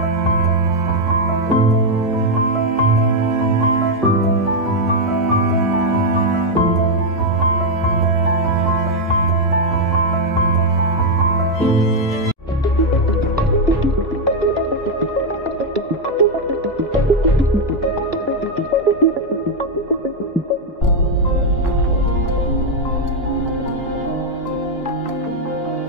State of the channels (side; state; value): both; normal; correlation 0.01